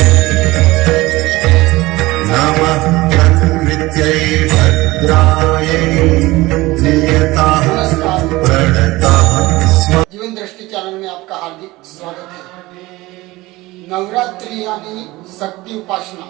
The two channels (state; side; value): quieter; left; 19.9 dB